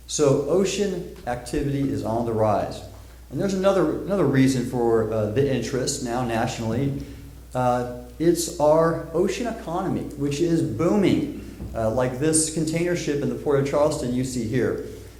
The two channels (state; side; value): identical; both; correlation 1.00